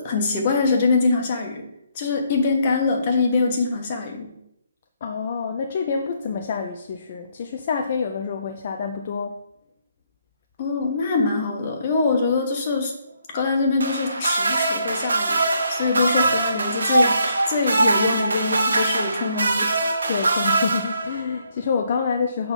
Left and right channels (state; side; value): inverted; both; correlation -0.72